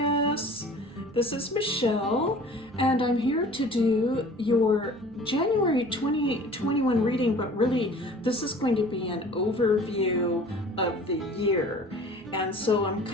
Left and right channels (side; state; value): both; normal; correlation 0.46